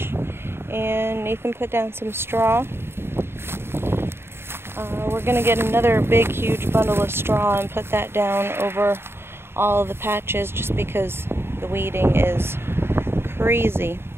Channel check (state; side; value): late; left; 0.11 ms